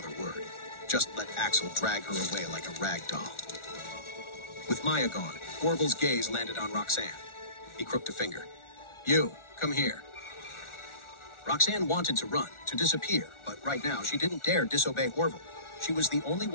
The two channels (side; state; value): right; late; 1.4 ms